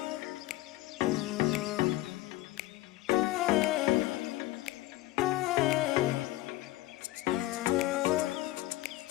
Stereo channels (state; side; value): quieter; right; 17.2 dB